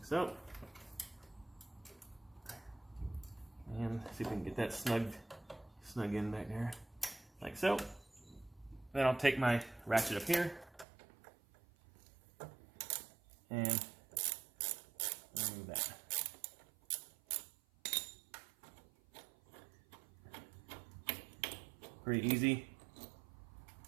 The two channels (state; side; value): drops out; left; at 10.9 s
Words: so. And see if we can get that snug in back there, like so. Then I'll take my ratchet up here and remove that. Pretty easy.